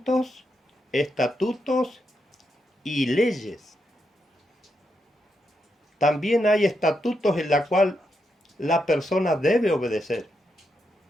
estatutos y leyes. También hay estatutos en la cual la persona debe obedecer.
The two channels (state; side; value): normal; both; correlation 0.83